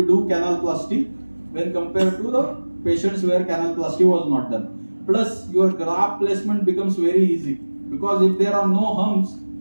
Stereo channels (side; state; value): both; inverted; correlation -1.00